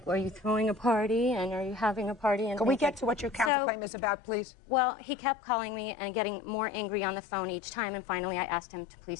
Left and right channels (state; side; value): drops out; right; at 3.5 s